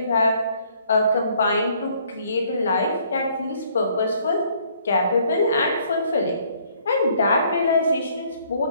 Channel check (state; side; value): inverted; both; correlation -0.63